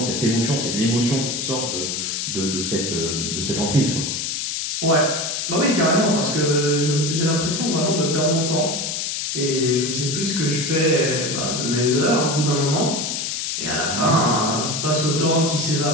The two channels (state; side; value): noise; left; hiss, 2 dB below the sound